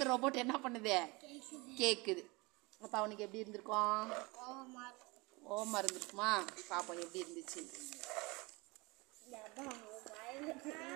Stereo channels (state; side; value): quieter; left; 25.5 dB